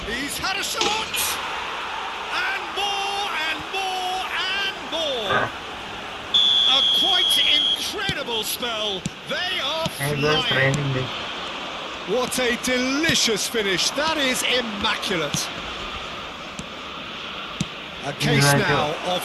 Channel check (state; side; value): identical; both; correlation 1.00